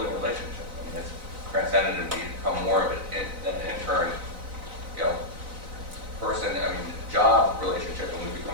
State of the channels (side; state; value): left; late; 4.0 ms